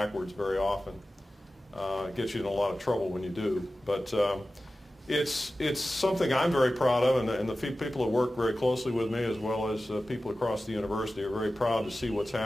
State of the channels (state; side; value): normal; both; correlation 0.95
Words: very often. It gets you in a lot of trouble when you do, but it's something I'm very proud of, and the people that work very closely with me, as well as people across the university, are very proud to see what's